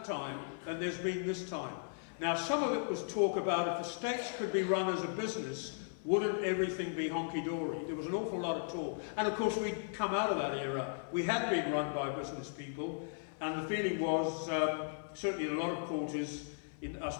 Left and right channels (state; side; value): silent; right; 53 dB below the other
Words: time than there's been this time. Now, some of it was talk about if the States could be run as a business, wouldn't everything be honky-dory? There was an awful lot of talk. And of course, we'd come out of that era. We had been run by business people, and the feeling was, certainly in a lot of quarters, in I